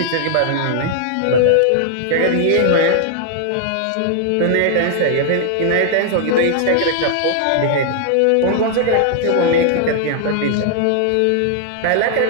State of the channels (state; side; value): different; both; correlation 0.00